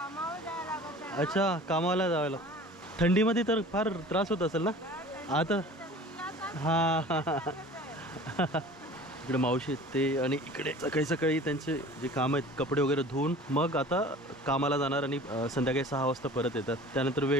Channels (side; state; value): both; normal; correlation 0.43